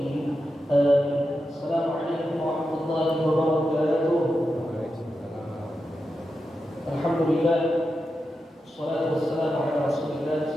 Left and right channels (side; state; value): both; normal; correlation 0.89